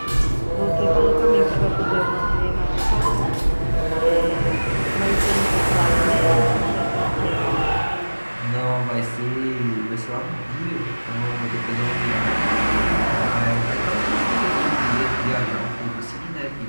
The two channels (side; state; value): both; inverted; correlation -1.00